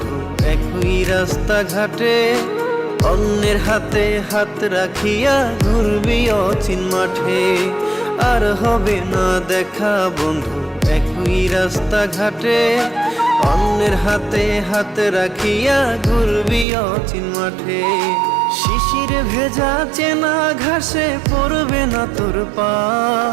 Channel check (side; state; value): left; drops out; at 16.7 s